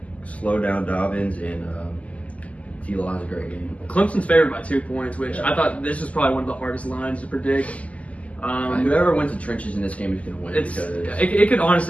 slow down Dobbins, and T-Law has a great game. Clemson's favored by 2 points, which I thought this was probably one of the hardest lines to predict. Whoever wins the trenches in this game is going to win. It could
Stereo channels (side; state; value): right; late; 0.069 ms